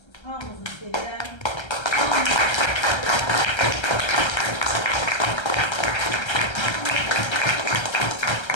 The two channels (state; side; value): late; right; 1.3 ms